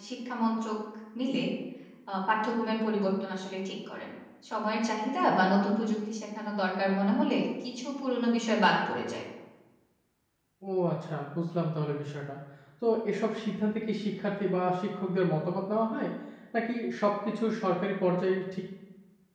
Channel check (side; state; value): both; identical; correlation 1.00